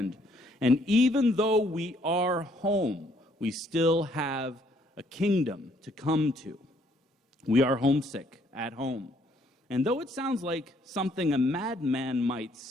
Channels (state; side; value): normal; both; correlation 0.66